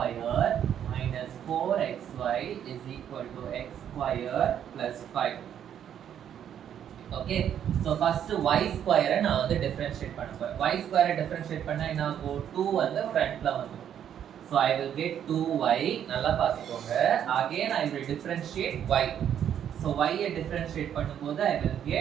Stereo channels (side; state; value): left; quieter; 9.5 dB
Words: minus 4xy is equal to x square plus 5. Okay, so first y square நான் வந்து differentiate பண்ண போறேன். Y square differentiate பண்ணா என்ன ஆகும்? 2 வந்து ஃப்ரண்ட்ல வந்துரும். So I will get 2y. நல்லா பார்த்துக்கோங்க. Again I will differentiate y. So y ஐ differentiate பண்ணும்போது I will